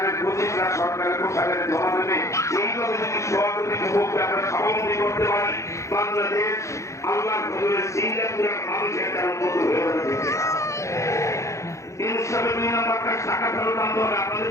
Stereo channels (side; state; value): right; late; 0.15 ms